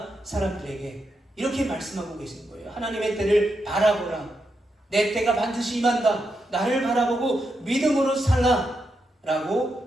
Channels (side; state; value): both; normal; correlation 0.84